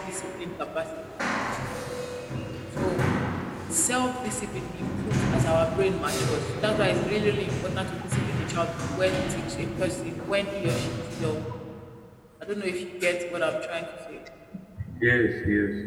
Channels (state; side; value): identical; both; correlation 1.00